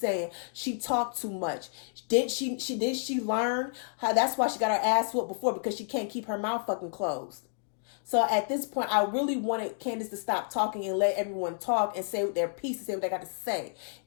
she talked too much. Did she learn how? That's why she got her ass whooped before, because she can't keep her mouth fucking closed. So at this point, I really wanted Candace to stop talking and let everyone talk and say their piece and say what they got to say.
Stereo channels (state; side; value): silent; right; digital silence